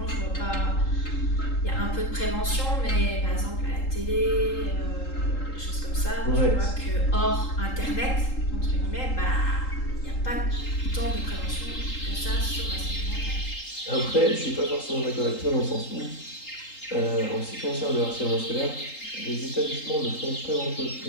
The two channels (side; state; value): right; late; 3.8 ms